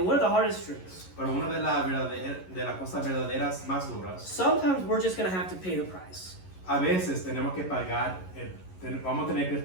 one of the hardest truths, Pero una de las cosas verdaderas más duras, sometimes we're just going to have to pay the price. a veces tenemos que vamos a tener que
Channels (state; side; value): late; right; 11 ms